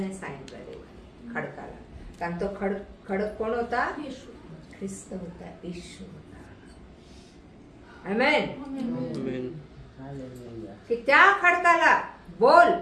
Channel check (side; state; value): both; identical; correlation 1.00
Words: सांगितलं खडकाला, कारण तो खडक कोण होता? ख्रिस्त होता, येशू होता. आमेन. की त्या खडकाला बोल,